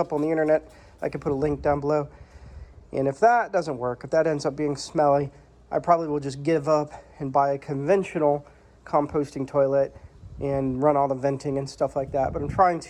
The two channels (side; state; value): both; identical; correlation 1.00